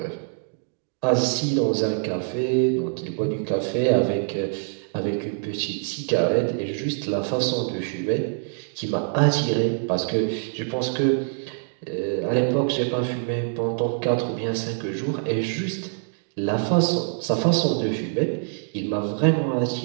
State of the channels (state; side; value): silent; left; digital silence